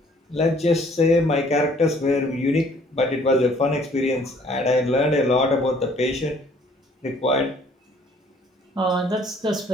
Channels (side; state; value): both; normal; correlation 0.59